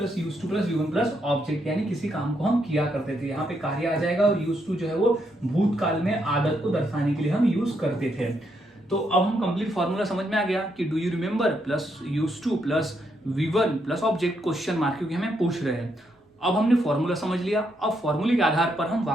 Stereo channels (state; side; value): normal; both; correlation 0.78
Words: use to plus V1 plus object, यानी किसी काम को हम किया करते थे। यहाँ पे कार्य आ जाएगा और यूज टू जो है वो भूतकाल में आदत को दर्शाने के लिए हम यूज करते थे। तो अब हम कंप्लीट फॉर्मूला समझ में आ गया कि do you remember plus use to plus V1 plus object question mark, क्योंकि हमें पूछ रहे हैं। अब हमने फॉर्मूला समझ लिया, अब फॉर्मूले के आधार पर हम